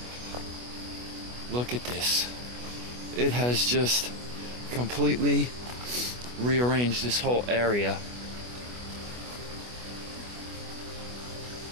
Look at this. It has just completely rearranged this whole area.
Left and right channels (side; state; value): left; late; 24 ms